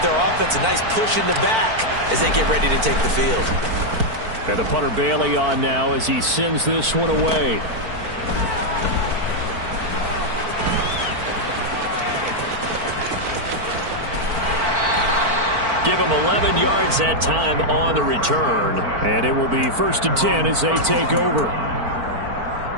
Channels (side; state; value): left; late; 4.5 ms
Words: their offense a nice push in the back as they get ready to take the field. And the punter Bailey on now as he sends this one away. Give him 11 yards that time on the return. And it will be 1st and 10 as they take over.